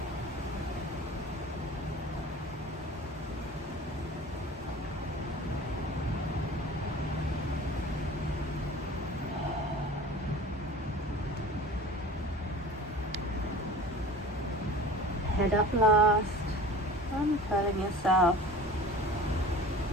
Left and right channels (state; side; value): normal; both; correlation 0.40